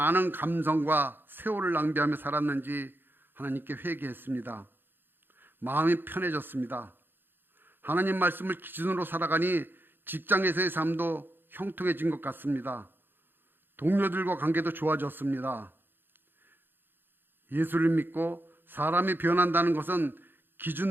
감성과 세월을 낭비하며 살았는지 하나님께 회개했습니다. 마음이 편해졌습니다. 하나님 말씀을 기준으로 살아가니 직장에서의 삶도 형통해진 것 같습니다. 동료들과 관계도 좋아졌습니다. 예수를 믿고 사람이 변한다는 것은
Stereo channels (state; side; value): late; left; 0.098 ms